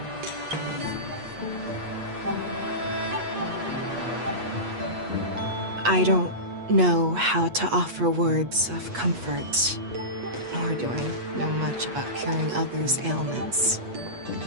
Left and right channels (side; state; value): left; late; 8.3 ms